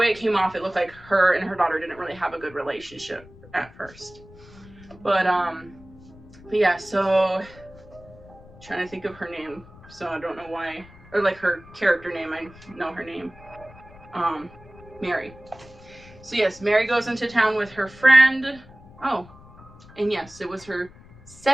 it came off, it looked like her and her daughter didn't really have a good relationship at first. But yeah, so trying to think of her name, so I don't know why, or like her character name, I know her name, Mary. So yes, Mary goes into town with her friend. Oh, and yes, it was her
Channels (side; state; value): left; noise; rumble, 22 dB below the sound